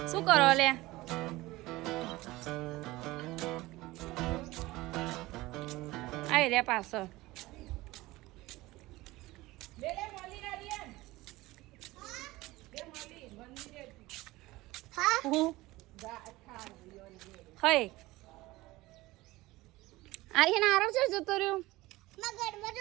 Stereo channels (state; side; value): quieter; left; 19.3 dB